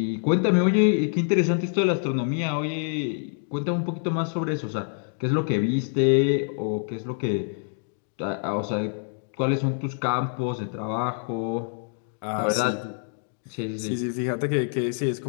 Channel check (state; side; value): silent; right; digital silence